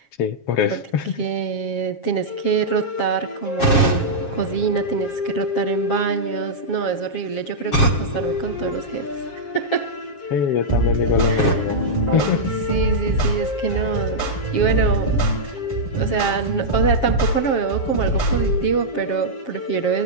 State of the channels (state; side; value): late; right; 7.4 ms